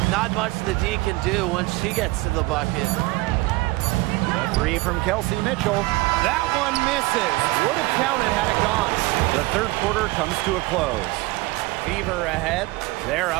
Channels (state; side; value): quieter; left; 21.6 dB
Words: Not much the D can do once she gets to the bucket. The three from Kelsey Mitchell. That one misses. Would have counted had it gone. The third quarter comes to a close. Fever ahead. They're